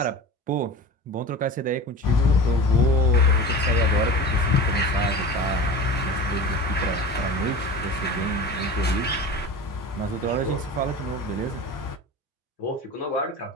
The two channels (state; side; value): normal; both; correlation 0.34